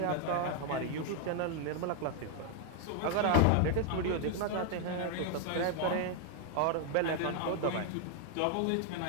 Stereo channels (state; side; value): different; both; correlation 0.00